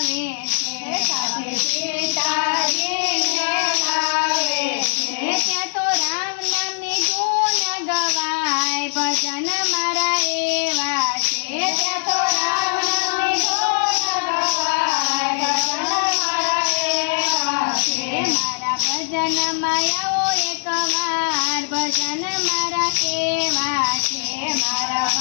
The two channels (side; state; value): right; silent; digital silence